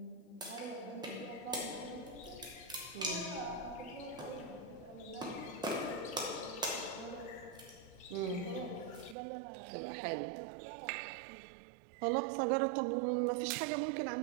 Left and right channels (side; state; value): left; drops out; at 9.2 s